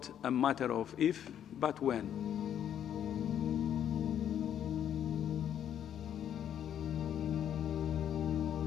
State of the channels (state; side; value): quieter; right; 9.8 dB